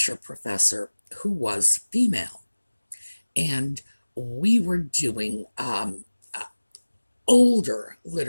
professor who was female, and we were doing older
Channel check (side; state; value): both; inverted; correlation -1.00